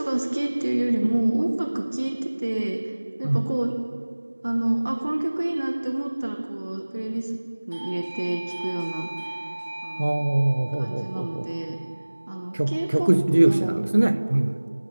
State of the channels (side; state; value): both; inverted; correlation -1.00